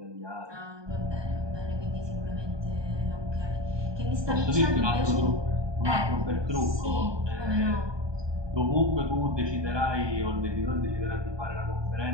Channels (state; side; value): late; left; 1.2 ms